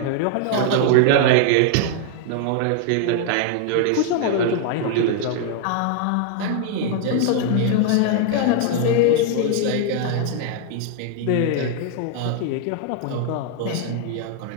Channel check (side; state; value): both; different; correlation 0.00